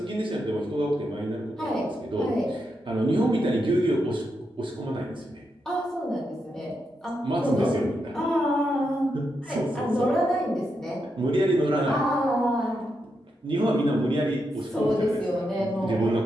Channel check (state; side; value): normal; both; correlation 0.84